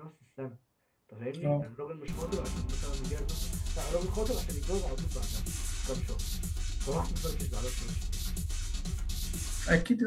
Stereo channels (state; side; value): identical; both; correlation 1.00